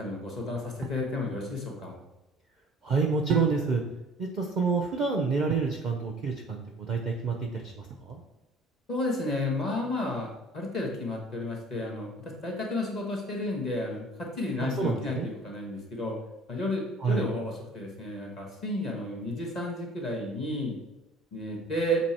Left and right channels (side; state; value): both; normal; correlation 0.50